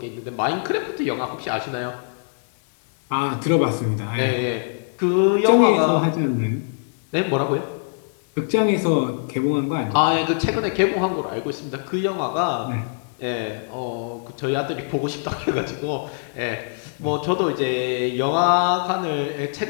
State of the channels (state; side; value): silent; right; digital silence